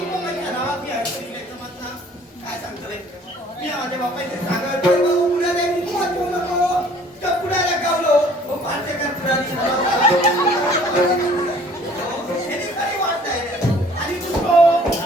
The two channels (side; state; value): both; normal; correlation 0.54